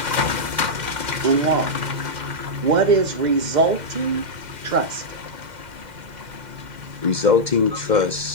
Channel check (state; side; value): late; left; 2.1 ms